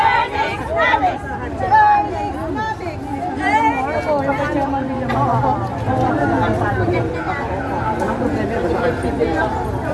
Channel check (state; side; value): identical; both; correlation 1.00